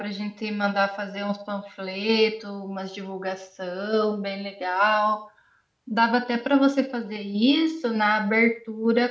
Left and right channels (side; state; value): both; identical; correlation 1.00